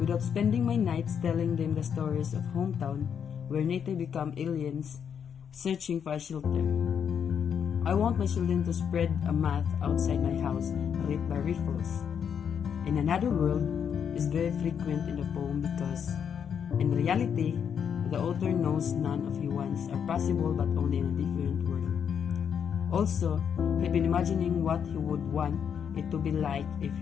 without spending my nights telling them the stories of hometown where native become aliens searching for a shelter. I want my children to spread a mat outside my house ripped by rifles. In another world is very frequent in the poem because, in reality, the author knows none of his wants are possible but only in a different world. Also, he'd been imagining what he would want it to be like if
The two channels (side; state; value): right; quieter; 7.7 dB